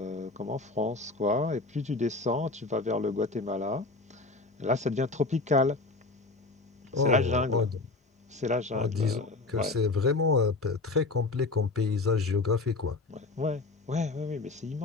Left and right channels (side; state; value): right; quieter; 3.4 dB